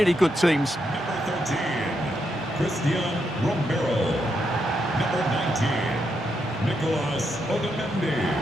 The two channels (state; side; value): normal; both; correlation 0.81